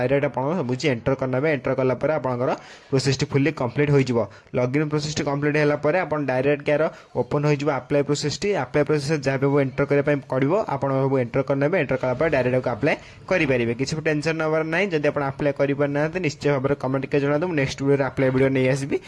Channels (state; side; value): identical; both; correlation 1.00